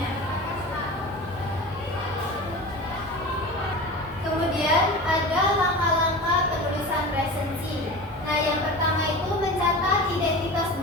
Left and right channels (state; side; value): normal; both; correlation 0.32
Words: Kemudian ada langkah-langkah penulisan resensi. Nah, yang pertama itu mencatat identitas